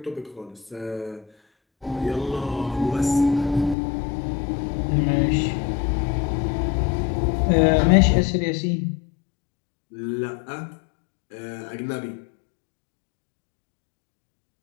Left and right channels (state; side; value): drops out; right; at 3.8 s